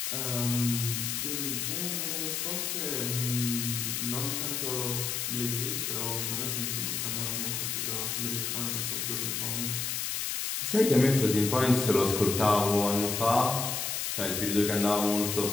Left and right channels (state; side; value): noise; left; hiss, 1 dB below the sound